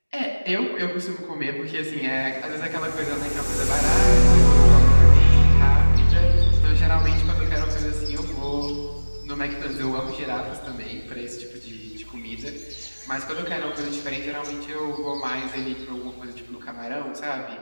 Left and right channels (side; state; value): both; inverted; correlation -1.00